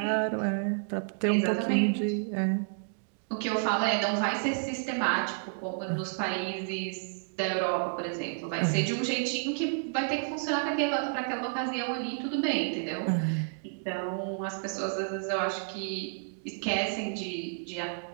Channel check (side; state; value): left; silent; digital silence